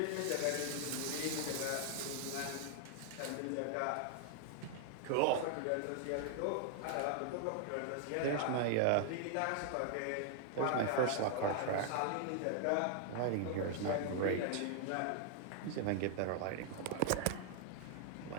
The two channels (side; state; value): both; different; correlation 0.00